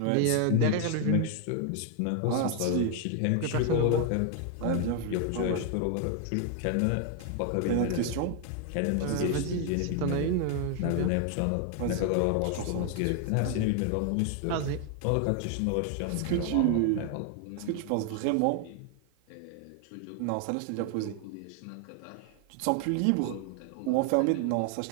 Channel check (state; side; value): different; both; correlation 0.00